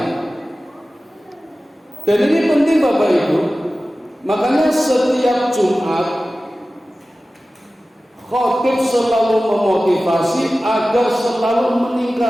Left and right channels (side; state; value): both; normal; correlation 0.96